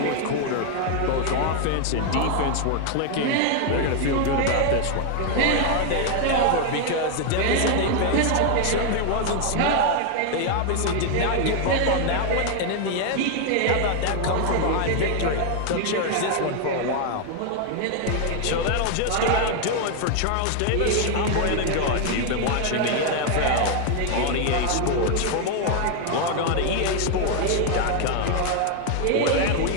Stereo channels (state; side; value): different; both; correlation 0.01